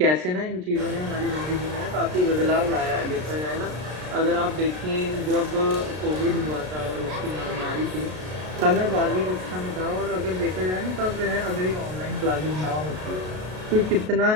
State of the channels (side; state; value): left; late; 33 ms